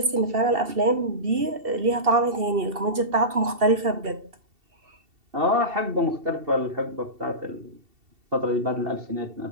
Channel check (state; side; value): late; left; 2.7 ms